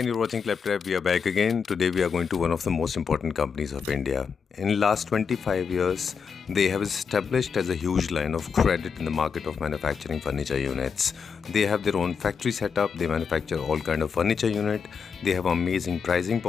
you're watching Claptrap. We are back again. Today, we are going to one of the most important companies of India. In last 25 years, they have established as a huge line of credit in the market of manufacturing furniture units. They have their own factory setup. They manufacture all kind of furniture unit. They have amazing pricing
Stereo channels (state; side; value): quieter; right; 6.2 dB